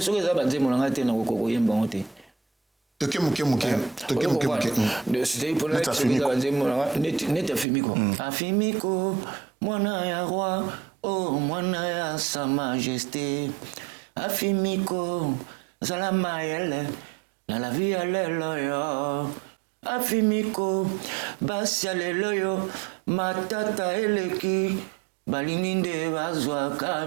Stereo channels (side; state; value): left; drops out; at 7.7 s